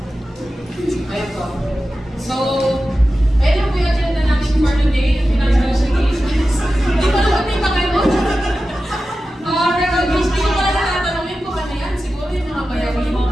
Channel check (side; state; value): both; normal; correlation 0.93